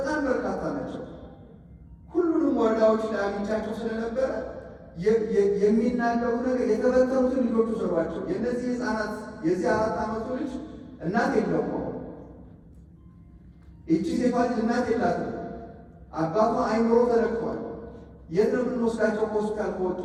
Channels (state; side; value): identical; both; correlation 1.00